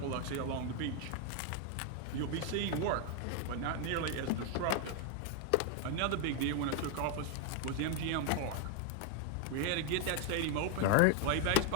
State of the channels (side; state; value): both; different; correlation 0.00